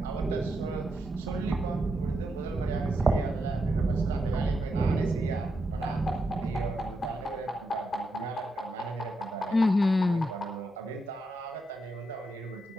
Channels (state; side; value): normal; both; correlation 0.83